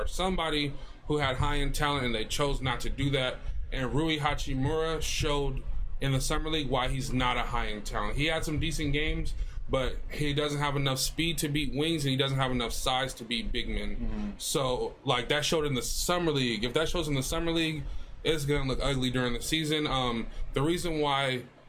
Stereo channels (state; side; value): identical; both; correlation 1.00